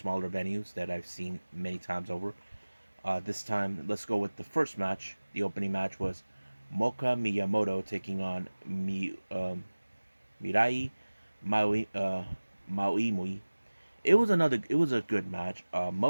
venues that I've seen many times over. This time, let's go with the first match. The opening match was Moka Miyamoto taking on Mirai Maui. It was a good match.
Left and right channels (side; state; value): both; inverted; correlation -1.00